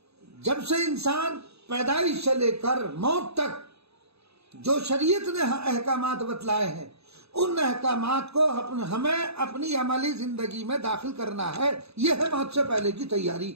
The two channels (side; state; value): left; late; 0.79 ms